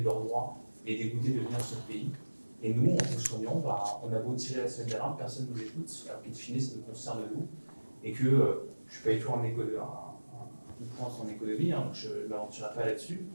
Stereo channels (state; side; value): inverted; both; correlation -1.00